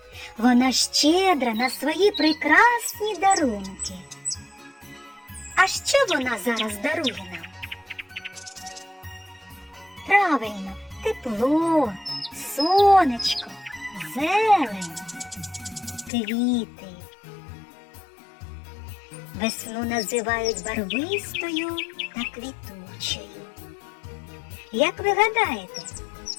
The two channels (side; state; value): right; drops out; at 16.1 s